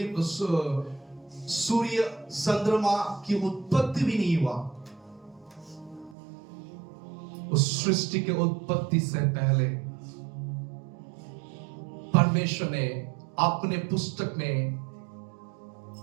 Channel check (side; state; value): left; drops out; at 6.2 s